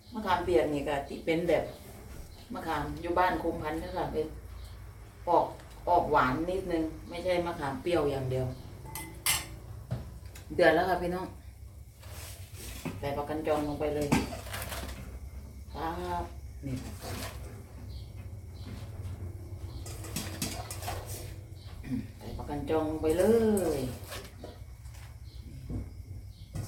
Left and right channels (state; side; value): identical; both; correlation 1.00